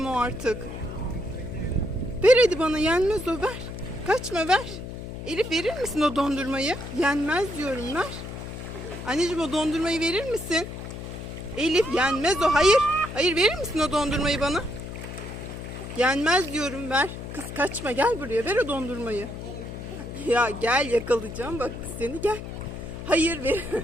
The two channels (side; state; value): left; noise; hum, 9 dB below the sound